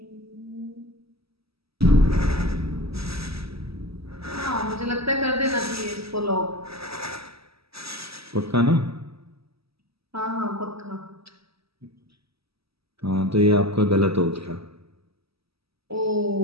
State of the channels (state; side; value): late; left; 0.76 ms